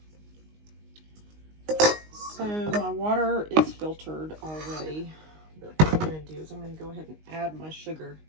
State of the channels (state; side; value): late; left; 19 ms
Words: So my water is filtered already, but what I'm going to do is I'm going to go ahead and add my sugar.